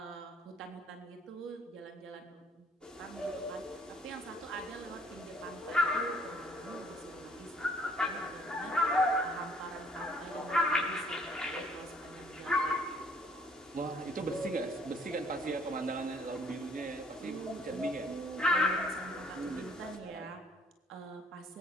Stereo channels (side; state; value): both; normal; correlation 0.61